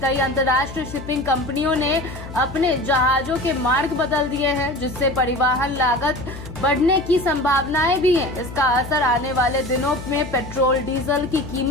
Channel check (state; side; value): noise; left; hum, 12 dB below the sound